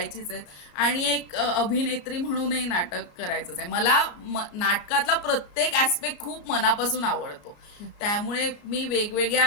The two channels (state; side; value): late; right; 34 ms